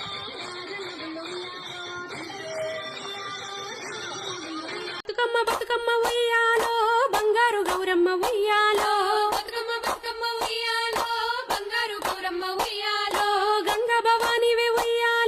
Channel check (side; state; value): both; identical; correlation 1.00